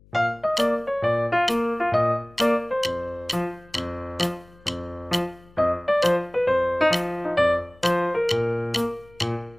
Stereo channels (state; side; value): noise; left; hum, 27 dB below the sound